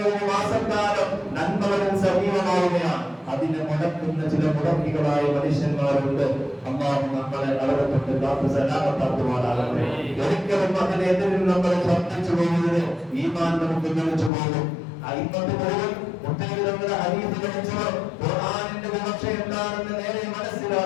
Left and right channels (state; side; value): drops out; right; at 14.3 s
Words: മാസക്കാലം നന്മകളിൽ സജീവമാവുകയാണ്. അതിനെ മുടക്കുന്ന ചില മുടക്കികളായ മനുഷ്യന്മാരുണ്ട്. അല്ലാഹു നമ്മളെ അവരെ തൊട്ട് കാത്തു സലാമത്താക്കുമാറാകട്ടെ. ഒരിക്കലും അതിനെതിരിൽ നമ്മൾ ശ്രദ്ധിച്ചു പോകുന്നത് ഈമാൻ നമുക്ക് തെളിച്ചു പോകും. അയിമ്മത്ത് മുഴുവൻ മുത്തനബിയുടെ ഹദീസ് പഠിച്ചവർ, ഖുർആനിന്റെ വിവക്ഷ എന്താണെന്ന് നേരെ